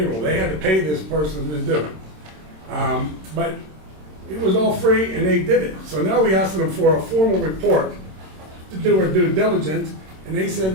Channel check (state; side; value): late; left; 26 ms